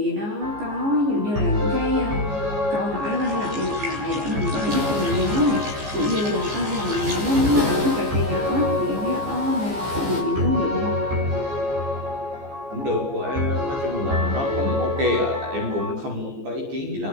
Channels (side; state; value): left; late; 14 ms